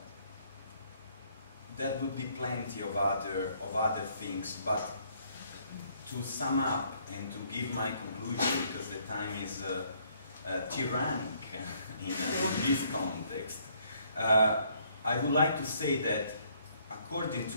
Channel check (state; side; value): inverted; both; correlation -0.66